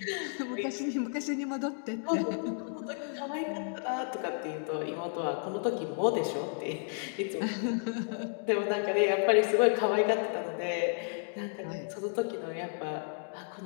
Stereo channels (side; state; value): right; silent; 56 dB below the other